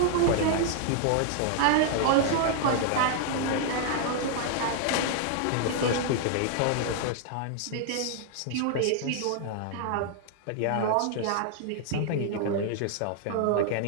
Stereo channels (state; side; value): different; both; correlation 0.00